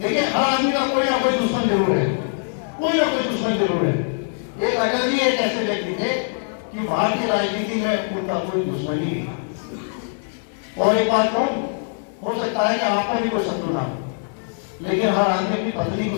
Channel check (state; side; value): silent; right; 64 dB below the other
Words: हर आदमी का कोई ना कोई दुश्मन जरूर है, कोई ना कोई दुश्मन जरूर है। एक अटल जी एक ऐसे व्यक्ति थे कि भारतीय राजनीति में उनका कोई दुश्मन ही नहीं। और एक बात कहूं, हो सकता है कि आपका भी कोई शत्रु ना हो, लेकिन हर आदमी अपनी पत्नी को